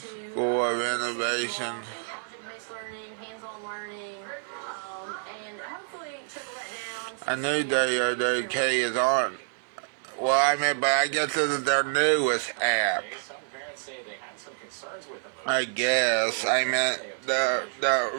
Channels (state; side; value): silent; left; digital silence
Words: to School of Innovation, project-based learning, hands-on learning, and hopefully trickle that down. I knew WOWK is on. Well, I mean, but I guess this is their newest app. So concerns with the move. I guess. I meant,